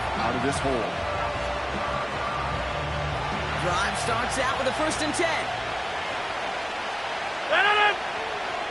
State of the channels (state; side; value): identical; both; correlation 1.00